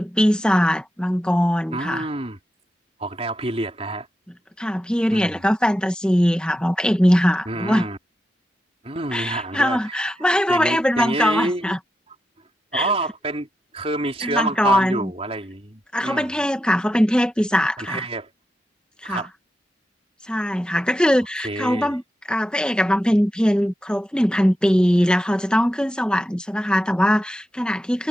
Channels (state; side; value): normal; both; correlation 0.88